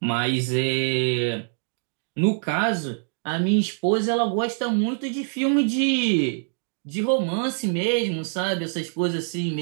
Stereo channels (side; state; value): left; silent; digital silence